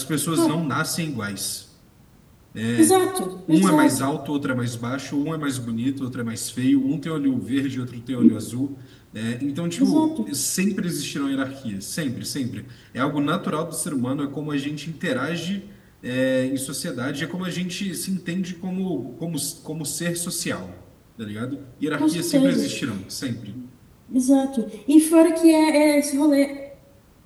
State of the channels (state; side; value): identical; both; correlation 1.00